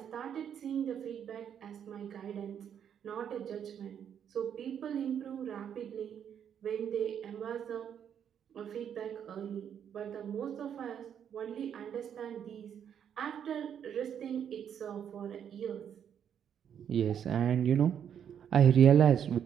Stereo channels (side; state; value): left; quieter; 8.7 dB